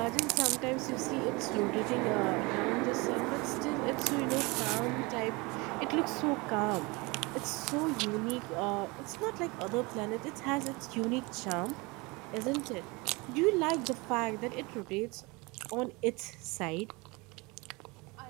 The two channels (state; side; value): quieter; left; 25.8 dB